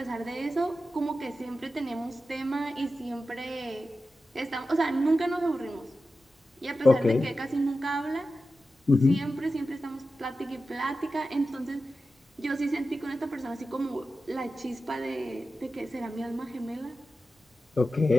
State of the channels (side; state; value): both; normal; correlation 0.92